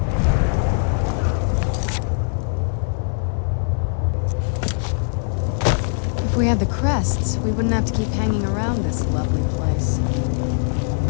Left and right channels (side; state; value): right; silent; 63 dB below the other